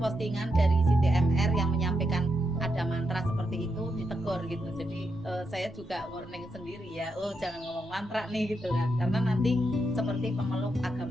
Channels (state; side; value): normal; both; correlation 0.82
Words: dari Siti MR yang menyampaikan ada mantra seperti itu, ditegur gitu. Jadi saya juga warning sendiri ya, jangan ngomong mantra nih gitu kan, karena nanti seperti pemeluk